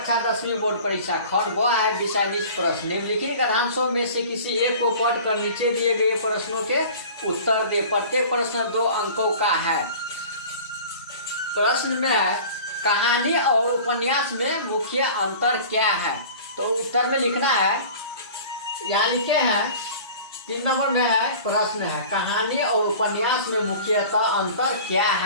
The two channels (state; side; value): inverted; both; correlation -0.42